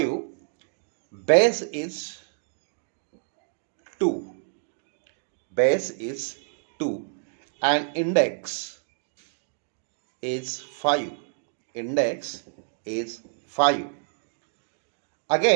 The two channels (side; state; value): left; silent; digital silence